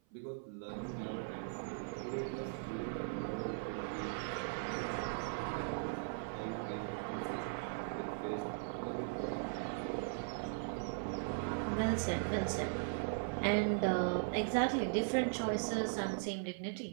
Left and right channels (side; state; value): left; silent; 52 dB below the other